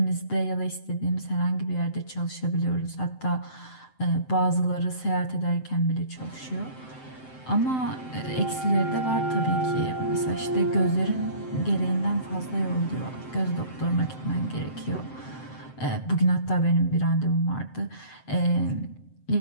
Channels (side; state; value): right; late; 7.8 ms